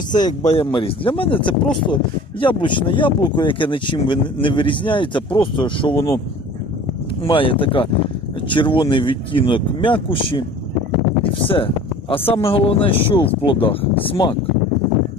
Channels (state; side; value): normal; both; correlation 0.44